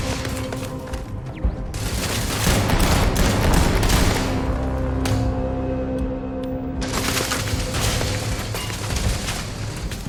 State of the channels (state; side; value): identical; both; correlation 1.00